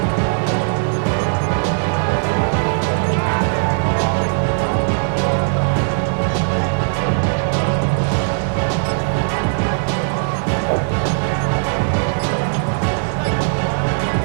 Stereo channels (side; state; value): left; silent; 67 dB below the other